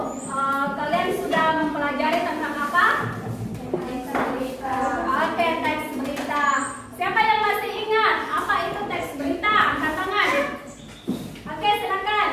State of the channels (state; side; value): identical; both; correlation 1.00